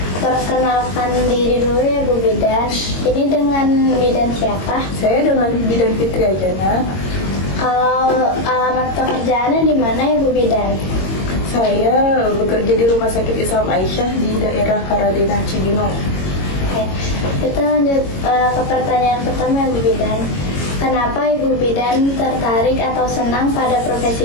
perkenalkan diri dulu ya Bu Bidan. Ini dengan bidan siapa? Saya dengan Bidan Fitri Ajana. Kalau alamat pekerjaannya di mana ya Bu Bidan? Saya bekerja di Rumah Sakit Islam Aisyah di daerah Karadena Cibinong. Oke, kita lanjut ke pertanyaan pertama ya Bu Bidan. Kenapa Ibu Bidan tertarik atau senang pada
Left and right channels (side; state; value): right; late; 22 ms